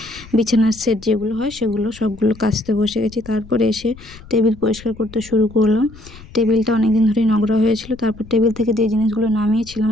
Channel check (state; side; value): noise; left; rumble, 20 dB below the sound